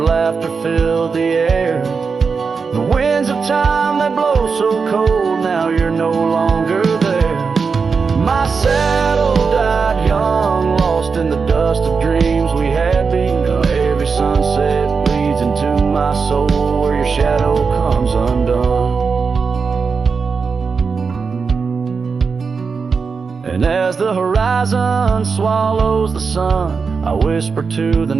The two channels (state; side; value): quieter; left; 5.2 dB